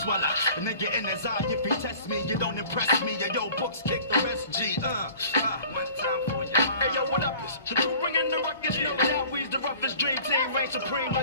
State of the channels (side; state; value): both; inverted; correlation -0.47